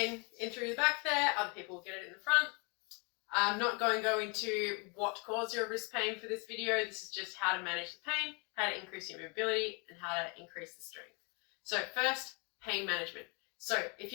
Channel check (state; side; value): quieter; right; 32.8 dB